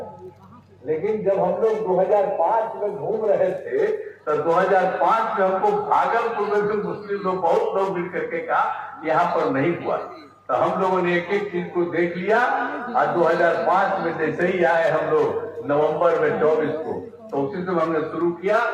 लेकिन जब हम लोग 2005 में घूम रहे थे तो 2005 में हमको भागलपुर में भी मुस्लिम लोग बहुत लोग मिल करके कहा यहाँ पर नहीं हुआ। तो हम लोगों ने एक एक चीज को देख लिया और 2005 में जैसे ही आए हम लोग नवंबर में 24 को, तो उसी से हमने शुरू किया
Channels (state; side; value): identical; both; correlation 1.00